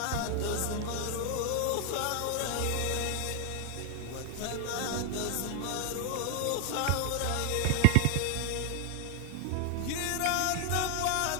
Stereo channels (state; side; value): different; both; correlation 0.00